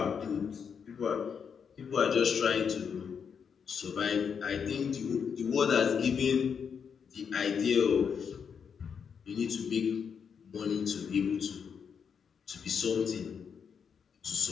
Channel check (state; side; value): quieter; right; 6.8 dB